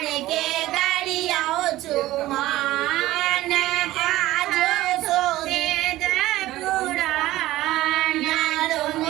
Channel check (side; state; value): left; quieter; 16.2 dB